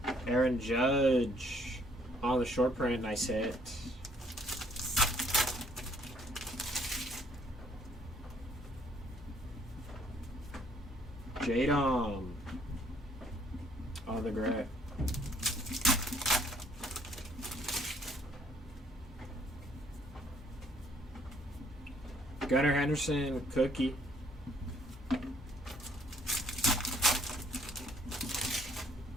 Aaron Judge on the short print. Nice hit. Jadom on the gray. Gunnar Henderson cookie.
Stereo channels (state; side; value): normal; both; correlation 0.63